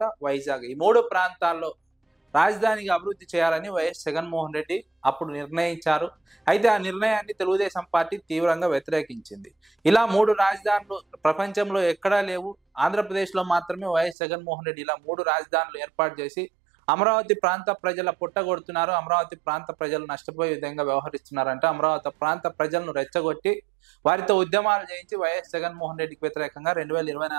వైజాగ్, ఈ మూడు ప్రాంతాల్లో రాజధానిగా అభివృద్ధి చేయాలని వైఎస్ జగన్మోహన్ రెడ్డి అప్పుడు నిర్ణయించారు. అయితే ఆ నిర్ణయాన్ని తెలుగుదేశం పార్టీ తీవ్రంగా వ్యతిరేకించింది. ఇలా మూడు రాజధానులు ప్రపంచంలో ఎక్కడా లేవు, ఆంధ్రప్రదేశ్లో మాత్రమే వైఎస్ జగన్మోహన్ రెడ్డి ఇలా మూడు రాజధానులు ఏర్పాటు చేసి అమరావతి ప్రాంత ప్రజల పుట్టగొడుతున్నారు, అమరావతి ప్రాంత ప్రజలు నష్టపోయే విధంగా వ్యవహరిస్తున్నారంట. అమరావతి ప్రాంత ప్రజలను రెచ్చగొట్టి వారితో ఉద్యమాలు చేయించి వైఎస్ జగన్మోహన్ రెడ్డికి వ్యతిరేకంగా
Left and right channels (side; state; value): left; drops out; at 14.2 s